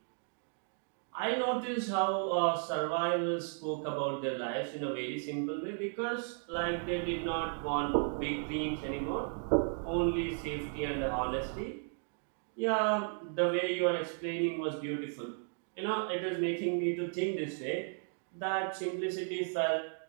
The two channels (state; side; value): silent; left; 55 dB below the other